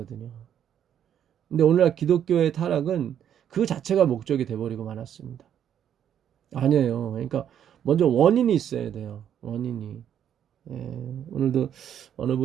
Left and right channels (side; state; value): left; quieter; 9.5 dB